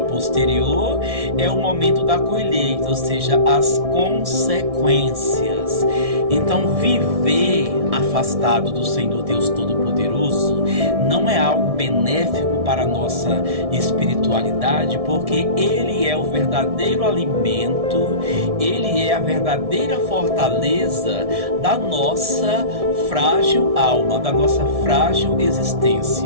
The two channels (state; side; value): late; left; 1.6 ms